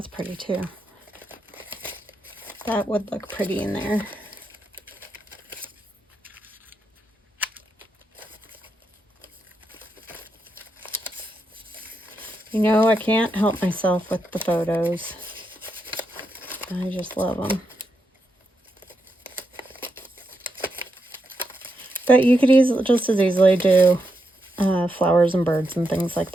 pretty too. That would look pretty in there. You know, I can't help myself with the photos. I just love them. But you could just as easily do flowers and birds and things like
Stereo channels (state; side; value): normal; both; correlation 0.84